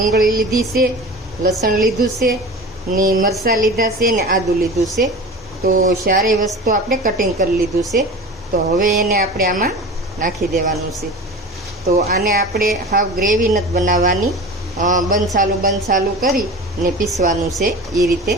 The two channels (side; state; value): both; normal; correlation 0.34